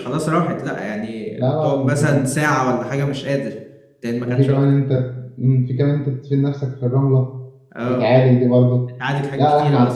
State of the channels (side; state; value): both; identical; correlation 1.00